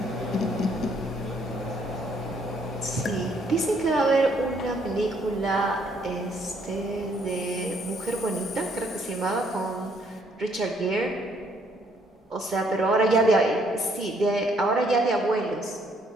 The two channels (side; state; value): both; normal; correlation 0.67